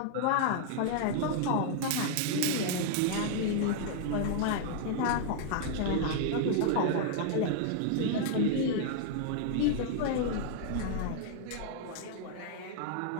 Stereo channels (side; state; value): both; different; correlation 0.00